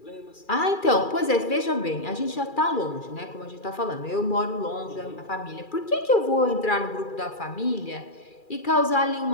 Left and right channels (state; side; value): late; right; 2.4 ms